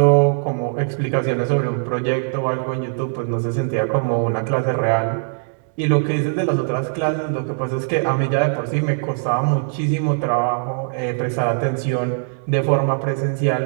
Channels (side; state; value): left; silent; digital silence